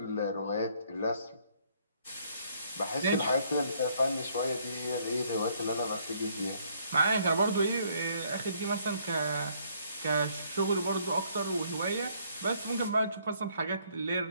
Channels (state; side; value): inverted; both; correlation -0.66